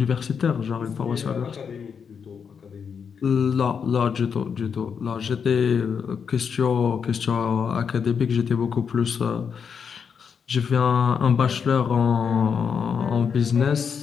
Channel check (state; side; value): quieter; right; 6.6 dB